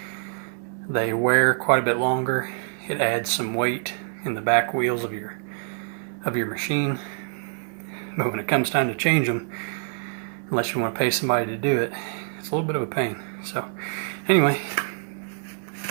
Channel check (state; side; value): silent; left; digital silence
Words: They wear quite a bit longer. It adds some weight in the back wheels of your machine. But when it comes time to change them, unless you want to pay somebody to do it, it's a little bit of a pain. So anyway,